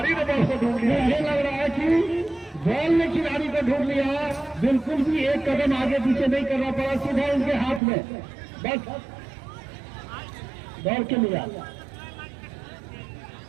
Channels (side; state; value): left; drops out; at 7.8 s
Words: ने बॉल को ढूंढ लिया। मुझे लग रहा है कि बॉल ने खिलाड़ी को ढूंढ लिया, बिल्कुल भी एक कदम आगे पीछे नहीं करना पड़ा, सीधा उनके हाथ में बस दौड़ के लिया।